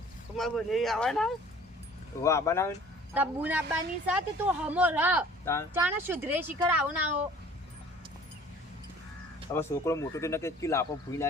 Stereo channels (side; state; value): both; normal; correlation 0.51